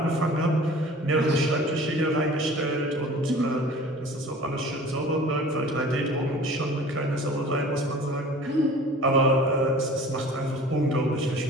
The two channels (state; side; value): normal; both; correlation 0.44